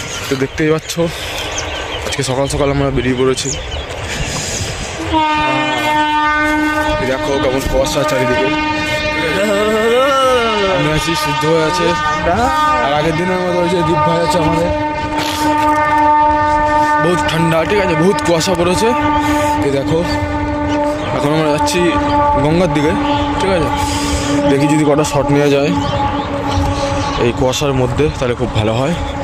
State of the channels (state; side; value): identical; both; correlation 1.00